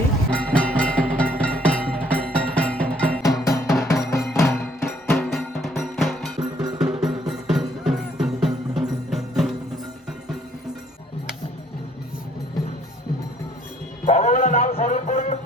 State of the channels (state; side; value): normal; both; correlation 0.63